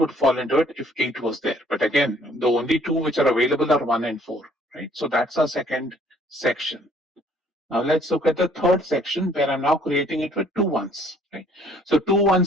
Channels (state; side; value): normal; both; correlation 0.60